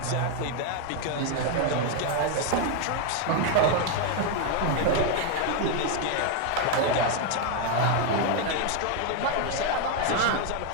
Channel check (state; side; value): different; both; correlation 0.01